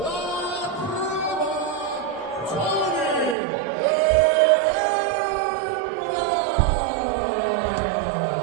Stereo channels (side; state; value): left; drops out; at 3.4 s